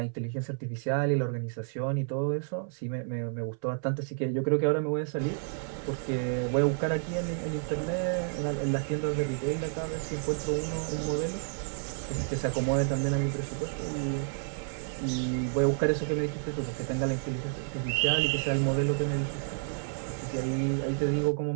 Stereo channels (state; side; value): silent; left; 58 dB below the other